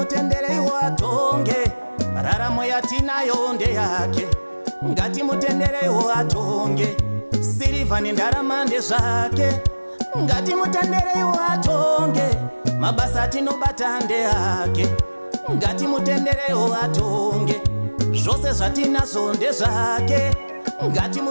atonge, raramo yatinayo ndeyake. Ngatimutenderei atonge, sirivha nendarama ndezvake. Ngatimutenderei atonge, mabasa atinobata ndeyake. Ngatimutenderei atonge, zvose zvatinazvo ndezvake.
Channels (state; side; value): inverted; both; correlation -1.00